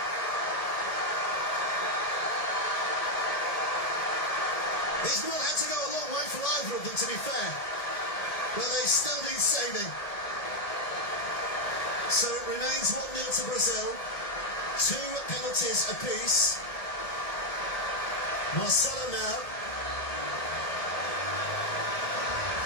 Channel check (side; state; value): right; late; 1.7 ms